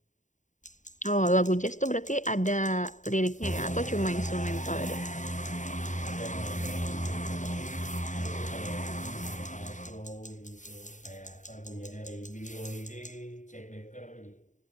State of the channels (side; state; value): right; late; 0.36 ms